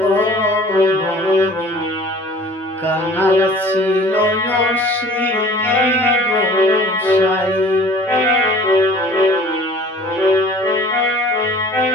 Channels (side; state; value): both; normal; correlation 0.47